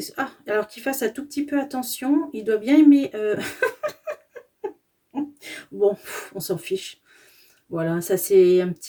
Alors qu'il fasse un tout petit peu attention, il doit bien aimer. Bon, on s'en fiche. Voilà, ça c'est un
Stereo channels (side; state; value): both; identical; correlation 1.00